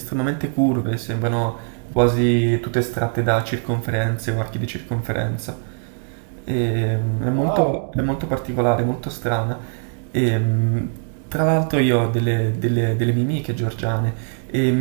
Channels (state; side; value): silent; left; digital silence